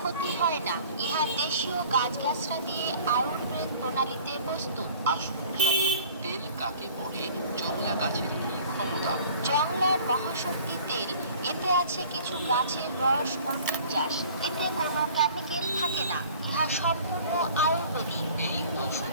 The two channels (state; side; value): inverted; both; correlation -0.48